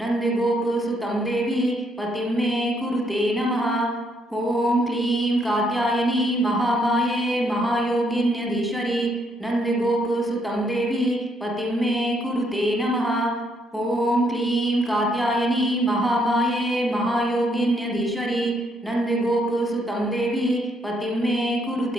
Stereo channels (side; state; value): both; normal; correlation 0.73